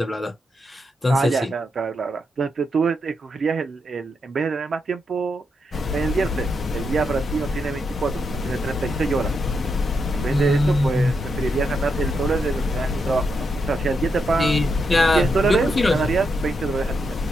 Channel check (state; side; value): normal; both; correlation 0.82